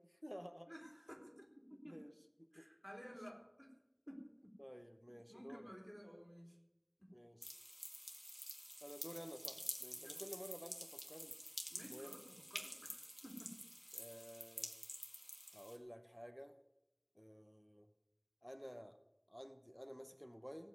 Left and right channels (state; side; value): identical; both; correlation 1.00